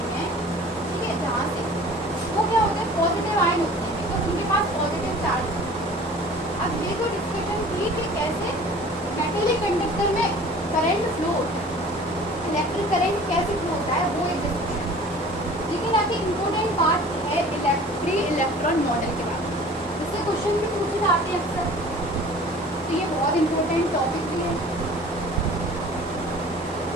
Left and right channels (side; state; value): both; normal; correlation 0.45